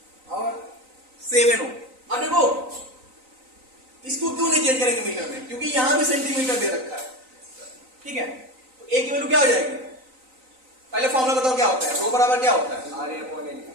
और 7 ओम। अब देखो इसको क्यों नहीं चेंज करेंगे मीटर में, क्योंकि यहां भी सेंटीमीटर दे रखा है, ठीक है। तो A की वैल्यू क्या हो जाएगी, पहले फॉर्मूला बताओ क्या होता है, रो बराबर क्या होता है RA/L,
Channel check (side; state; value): left; late; 3.9 ms